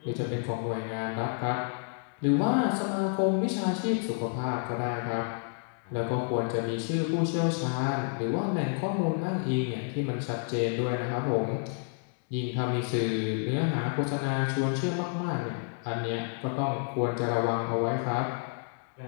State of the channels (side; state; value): right; silent; 58 dB below the other